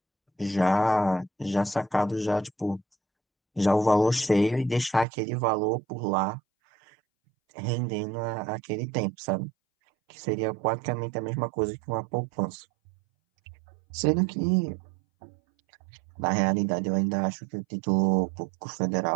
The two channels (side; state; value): left; drops out; at 5.1 s